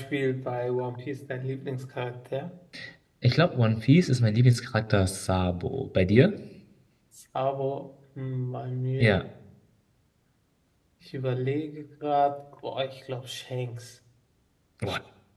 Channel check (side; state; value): both; identical; correlation 1.00